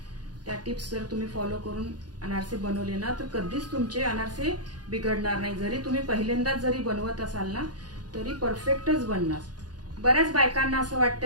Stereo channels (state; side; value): late; left; 0.69 ms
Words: त्या टिप्स जर तुम्ही फॉलो करून अनारसे बनवले ना तर कधीच तुमचे अनारसे बिघडणार नाही. जरी तुम्ही पहिल्यांदाच जरी बनवत असाल ना तरी परफेक्टच बनणार. बऱ्याच बायकांना असं वाटतं